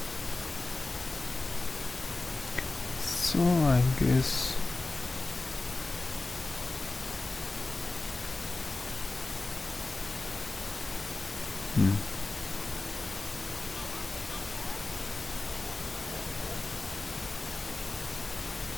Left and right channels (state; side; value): quieter; right; 3.2 dB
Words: So I guess